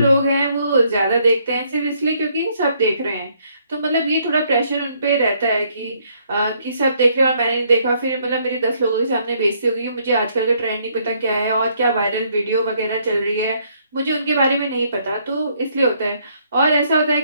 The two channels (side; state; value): both; inverted; correlation -0.69